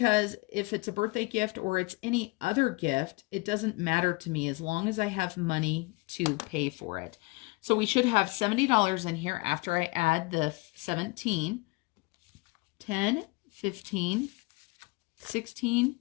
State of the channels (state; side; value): quieter; right; 25.5 dB